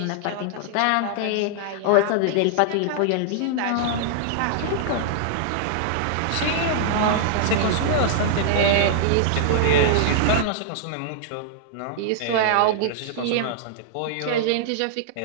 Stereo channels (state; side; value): different; both; correlation -0.01